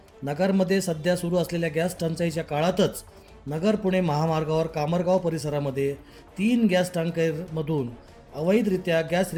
नगरमध्ये सध्या सुरू असलेल्या गॅस टंचाईच्या काळातच नगर पुणे महामार्गावर कामरगाव परिसरामध्ये 3 गॅस टँकरमधून अवैधरित्या गॅस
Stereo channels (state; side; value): identical; both; correlation 1.00